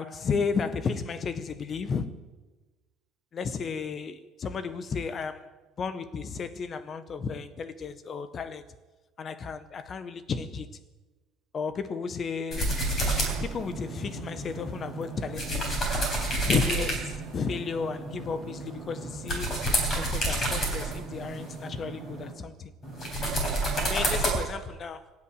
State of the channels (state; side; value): normal; both; correlation 0.59